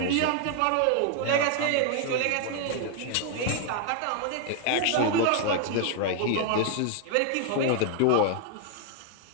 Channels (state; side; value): different; both; correlation 0.00